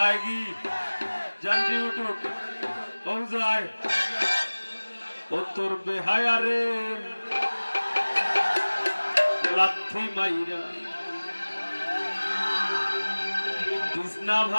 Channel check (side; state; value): both; inverted; correlation -1.00